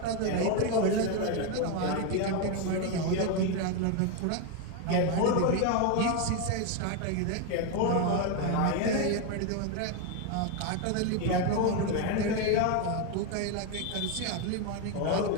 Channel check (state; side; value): different; both; correlation 0.02